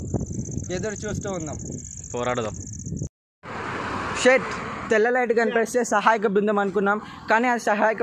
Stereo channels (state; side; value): identical; both; correlation 1.00